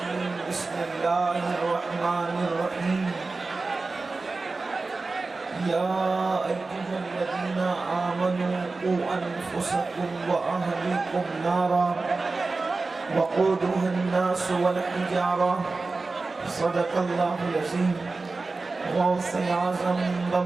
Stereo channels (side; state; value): left; quieter; 3.7 dB